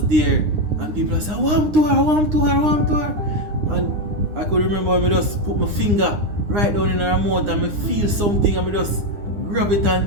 there and people said, warm to her. And I could remember me just put my finger right down in her mouth and me feel something and me just grab it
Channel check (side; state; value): left; late; 9.8 ms